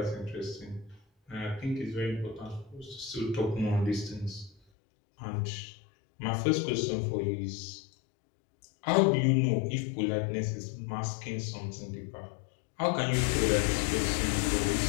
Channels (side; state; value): right; drops out; at 4.5 s